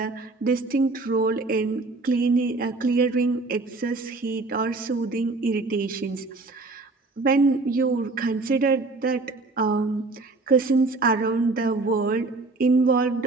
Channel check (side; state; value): left; quieter; 3.5 dB